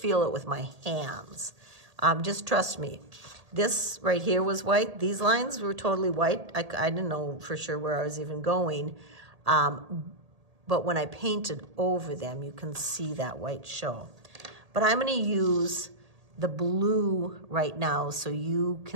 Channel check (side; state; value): left; late; 1.8 ms